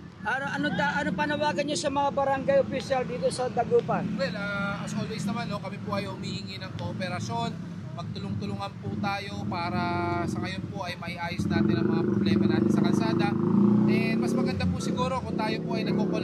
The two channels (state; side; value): identical; both; correlation 1.00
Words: ano panawagan niyo sa mga barangay official dito sa Dagupan? Well, as always naman, no, kami po ay humihingi ng kooperasyon. Magtulong-tulungan po tayo para sa ngayon po ay maiayos natin ang mga problema natin sa kalsada. And mas maganda po siguro kung tayo po ay